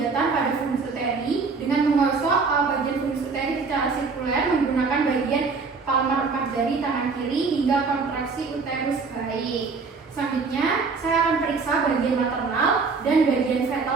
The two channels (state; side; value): quieter; left; 4.6 dB